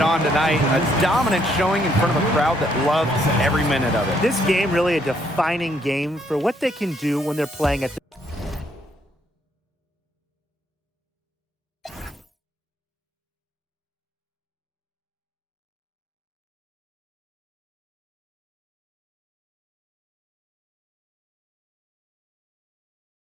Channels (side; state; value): both; normal; correlation 0.70